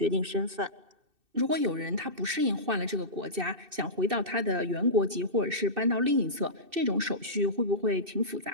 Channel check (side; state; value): left; late; 2.6 ms